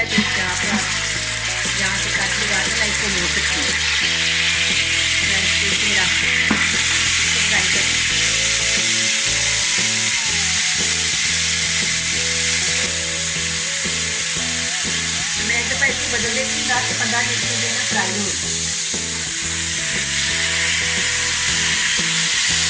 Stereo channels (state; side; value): identical; both; correlation 1.00